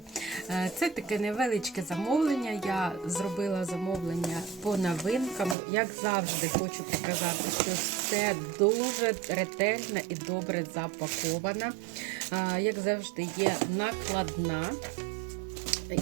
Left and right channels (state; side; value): drops out; left; at 5.6 s